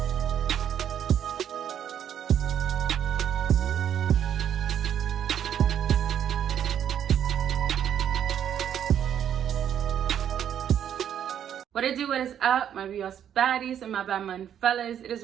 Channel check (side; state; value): left; quieter; 9.5 dB